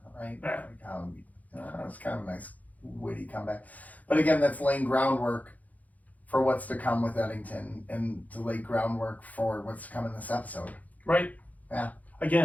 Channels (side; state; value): right; late; 0.077 ms